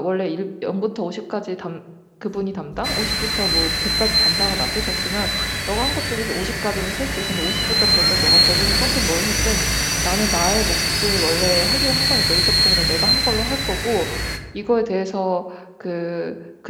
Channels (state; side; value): identical; both; correlation 1.00